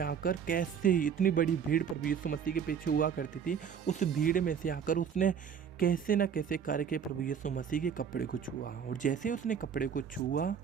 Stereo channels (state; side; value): quieter; left; 7.5 dB